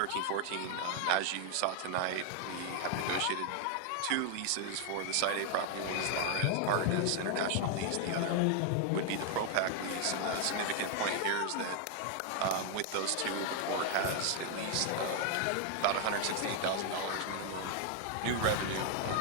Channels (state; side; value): different; both; correlation 0.00